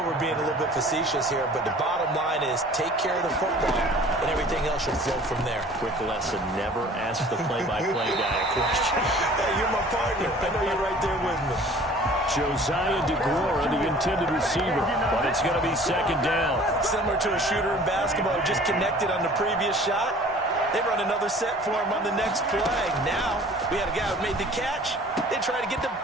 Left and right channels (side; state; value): both; normal; correlation 0.48